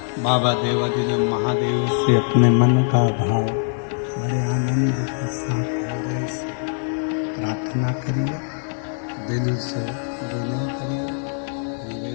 बाबा देवाधिदेव महादेव से अपने मन का भाव बड़े आनंद के साथ हृदय से प्रार्थना करिए, दिल से विनय करिए,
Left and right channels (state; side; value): silent; right; digital silence